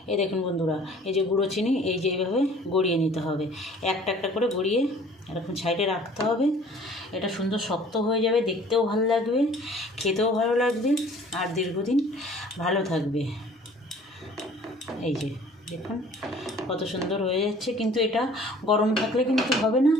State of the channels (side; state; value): both; normal; correlation 0.52